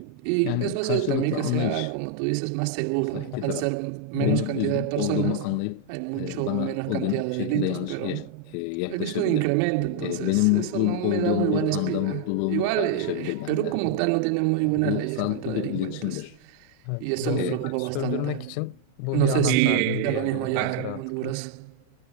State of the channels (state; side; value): different; both; correlation 0.00